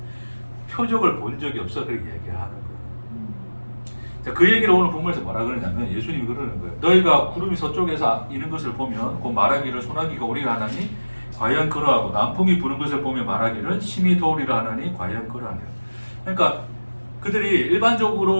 표적을 본 적이 없어. 그렇게 얘기하는 거예요. 자, 그 얘기를 오늘 본문에서 뭐라 그러냐면 예수님이 그러는 거예요. 너희가 구름이 서쪽에서 이는 것을 보면 곧 말하기를 소나기가 오리라 하나니 과연 그러하고 남풍이 부는 것을 보며 말하기를 심히 더우리라 하나니 과연 그러하니라. 그러니까 그들이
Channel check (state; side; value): inverted; both; correlation -1.00